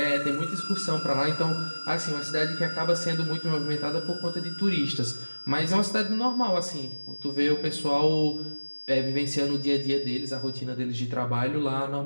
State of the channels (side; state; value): both; inverted; correlation -1.00